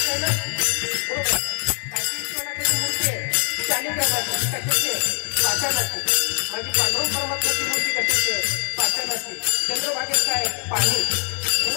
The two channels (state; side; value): silent; right; 61 dB below the other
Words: आहे ना, बरोबर. काशी विश्वनाथाची मूर्ती आहे शालिग्रामाची, कशाची आहे? पाषाणाची. माझी पांडुरंग परमात्म्याची मूर्ती कशाची आहे? पाषाणाची. चंद्रभागेत काय आहे? पाणी.